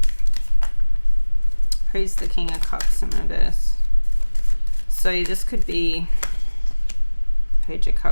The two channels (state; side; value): inverted; both; correlation -1.00